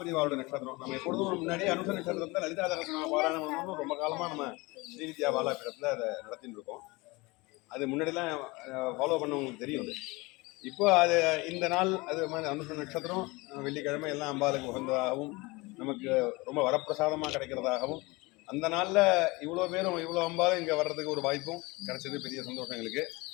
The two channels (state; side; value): quieter; right; 24.1 dB